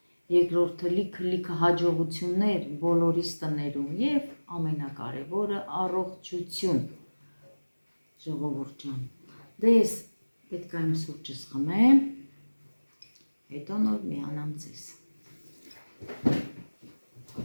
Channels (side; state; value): both; inverted; correlation -1.00